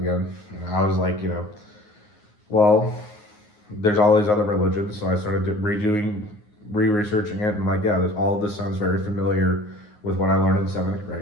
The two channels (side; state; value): right; late; 9.6 ms